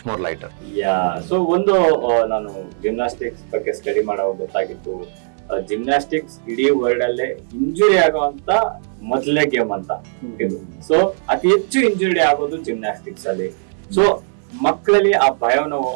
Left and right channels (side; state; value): left; silent; digital silence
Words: more lighter. So ಒಂದು ನಾನು ಜಿಮ್ನಾಸ್ಟಿಕ್ಸ್ ಬಗ್ಗೆ ಸ್ಟಡಿ ಮಾಡೋ ಗೊತ್ತಾಗಿತ್ತು, ಜಿಮ್ನಾಸ್ಟಿಕ್ಸ್ ಇಡೀ ವರ್ಲ್ಡ್ ಅಲ್ಲೇ ಇಂಜುರಿ ಆಗುವಂತ ಮೊದಲೇ ಗೇಮ್ ಅಂತ ಇದು. ಸೊ ಅತಿ ಹೆಚ್ಚು ಇಂಜುರಿ ಆಗೋದು ಜಿಮ್ನಾಸ್ಟಿಕ್ಸ್ ಅಲ್ಲಿ. ಸೊ ಮಕ್ಕಳಲ್ಲಿ ಆ ಭಯವನ್ನು